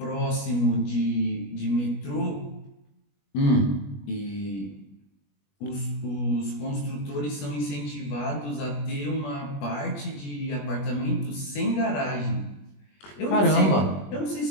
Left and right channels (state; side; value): late; right; 21 ms